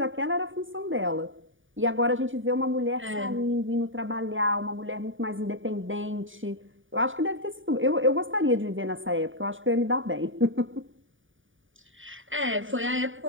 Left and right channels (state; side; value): late; left; 0.57 ms